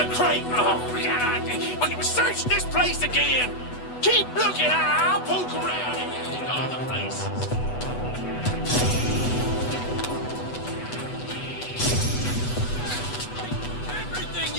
crate. Oh, God. We can search this place again. Keep looking. I'll poke around in other places. Everything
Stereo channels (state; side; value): late; right; 8.1 ms